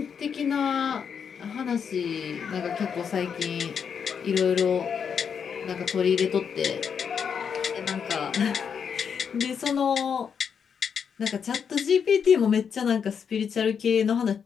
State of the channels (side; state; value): right; quieter; 7.0 dB